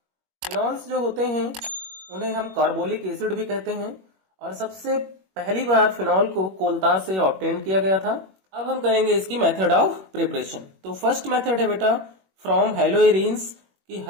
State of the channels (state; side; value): late; left; 21 ms